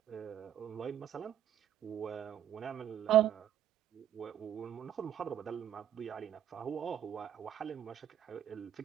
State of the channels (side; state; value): left; quieter; 10.5 dB